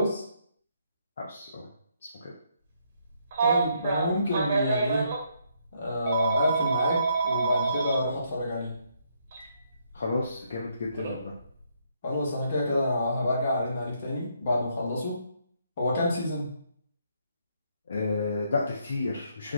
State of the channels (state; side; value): inverted; both; correlation -0.73